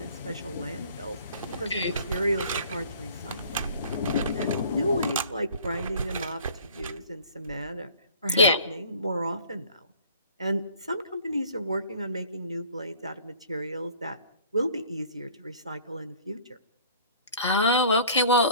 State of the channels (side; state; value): both; inverted; correlation -0.50